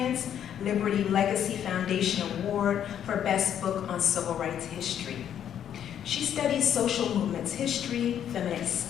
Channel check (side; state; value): right; quieter; 9.6 dB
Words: Liberty Legacy Foundation Award for Best Book on Civil Rights History. She studies social movements history, feminist